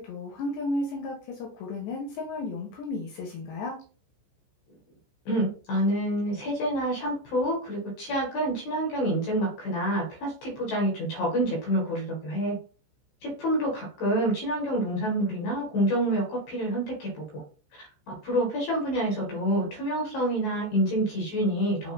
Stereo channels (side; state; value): right; late; 14 ms